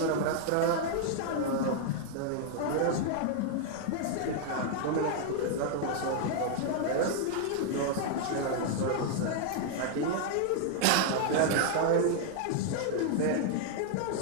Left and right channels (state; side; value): different; both; correlation 0.00